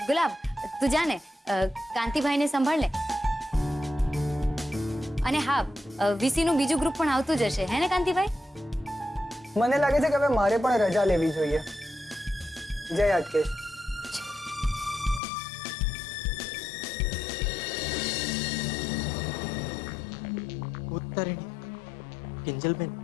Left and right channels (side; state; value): right; drops out; at 15.2 s